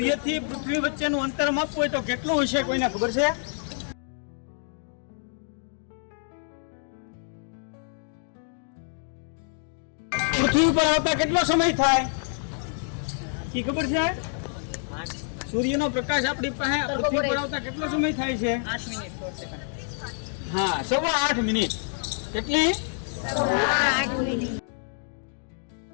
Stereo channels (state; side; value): silent; right; digital silence